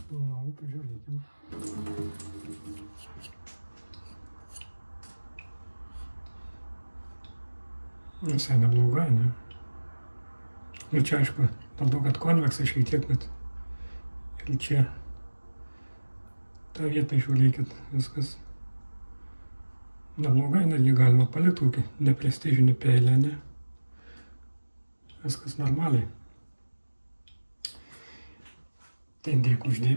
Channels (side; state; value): both; inverted; correlation -1.00